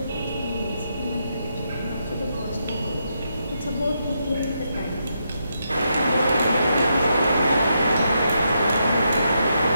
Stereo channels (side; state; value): both; inverted; correlation -0.82